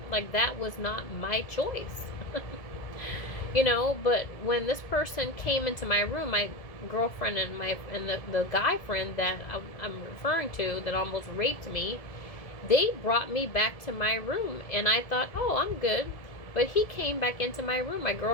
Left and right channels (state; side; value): late; right; 1.7 ms